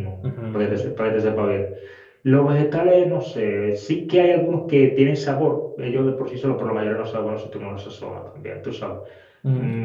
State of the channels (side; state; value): both; identical; correlation 1.00